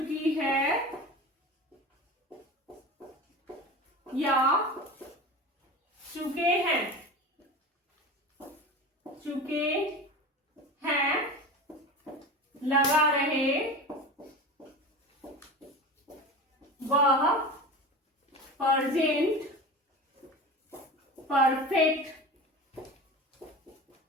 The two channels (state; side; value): normal; both; correlation 0.31